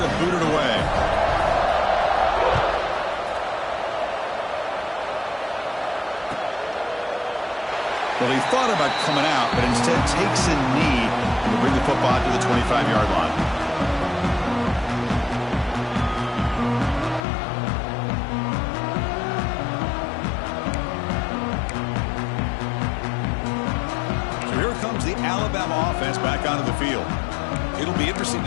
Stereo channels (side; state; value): right; drops out; at 17.2 s